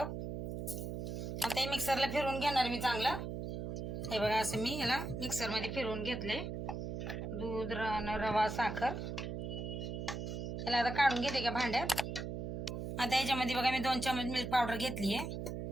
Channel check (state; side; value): noise; right; hum, 5 dB below the sound